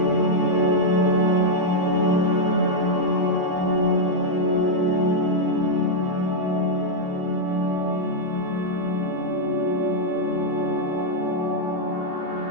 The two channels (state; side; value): late; left; 17 ms